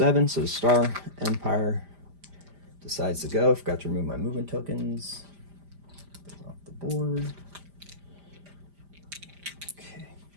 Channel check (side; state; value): left; late; 5.0 ms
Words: so the Star Empire decides to go. Forgot to remove my movement tokens. Off the board. Okay.